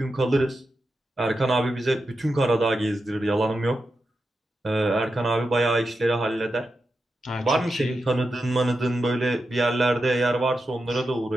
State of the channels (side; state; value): both; normal; correlation 0.89